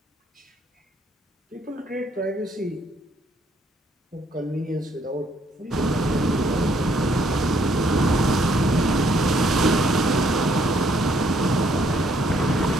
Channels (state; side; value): normal; both; correlation 0.68